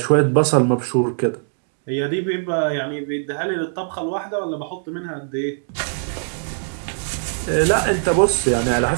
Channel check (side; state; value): left; silent; digital silence